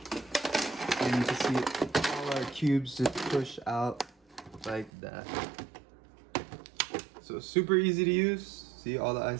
and you can see all our cubes just push out like that. So super easy to use. See, all the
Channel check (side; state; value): left; drops out; at 4.9 s